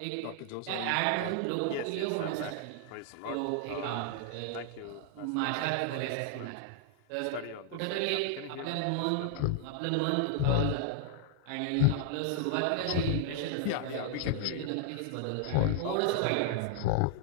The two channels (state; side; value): different; both; correlation -0.01